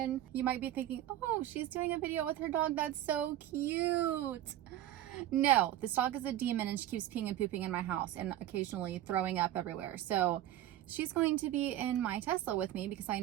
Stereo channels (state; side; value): quieter; left; 13.0 dB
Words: You might be thinking, oh, she's doing a video with her dog. That's so cute. No, this dog is a demon and she keeps peeing and pooping in my house and occasionally throwing up everywhere. So she's going to be in my Tesla with me because I